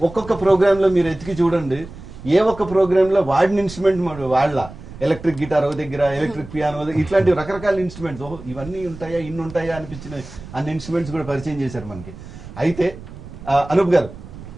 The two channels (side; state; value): right; noise; rumble, 15 dB below the sound